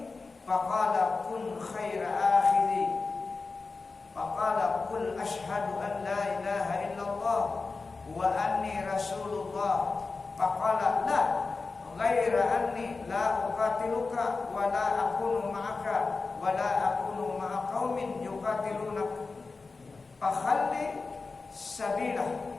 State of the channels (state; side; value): quieter; right; 4.1 dB